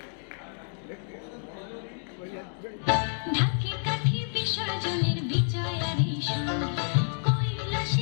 ঢাকি কাঠি বিসর্জনের বিজয়ারি সুর,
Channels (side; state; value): right; silent; digital silence